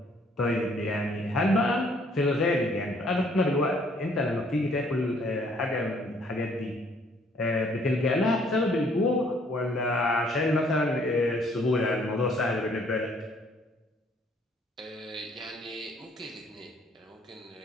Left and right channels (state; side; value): normal; both; correlation 0.63